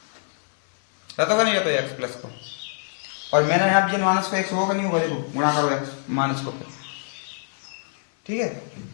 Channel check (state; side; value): silent; right; 62 dB below the other